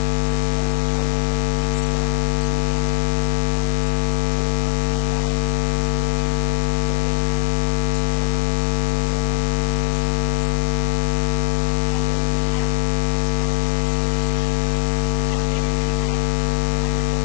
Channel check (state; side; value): silent; right; digital silence